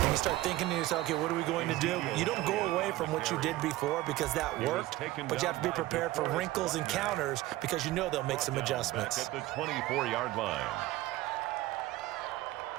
and you start thinking to yourself, okay, what are we going to do? You don't go away from what you did before because that worked, but you have to be prepared for wrinkles and counters because you know they'll make some adjustments. At the 24-yard line.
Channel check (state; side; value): quieter; left; 17.1 dB